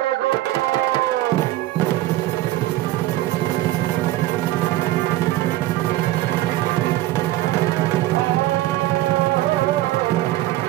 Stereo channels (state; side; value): quieter; left; 16.2 dB